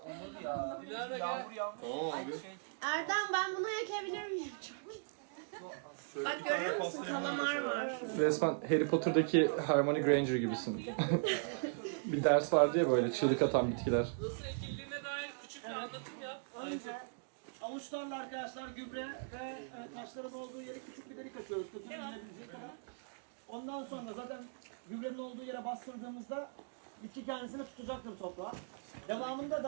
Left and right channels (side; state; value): left; silent; digital silence